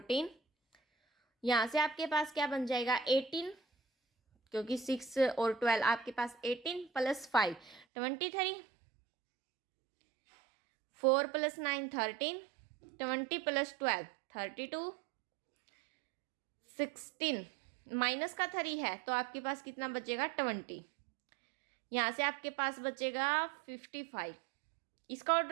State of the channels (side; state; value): left; drops out; at 7.9 s